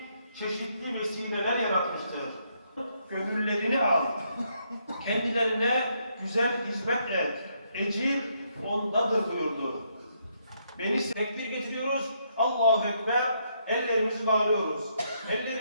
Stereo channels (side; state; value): both; inverted; correlation -0.74